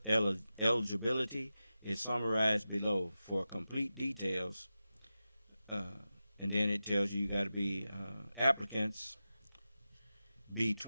is summarized below. For complete details, and then it tells you got to be applicants be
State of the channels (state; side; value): inverted; both; correlation -0.93